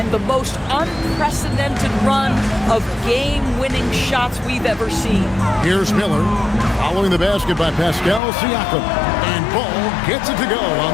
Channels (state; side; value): drops out; right; at 8.2 s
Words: the most unprecedented run of game-winning shots we've ever seen. Here's Miller, following the basket by Pascal Siakam. And Ball gets it to go on